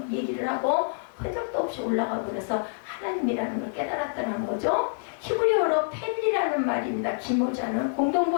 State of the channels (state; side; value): silent; right; 60 dB below the other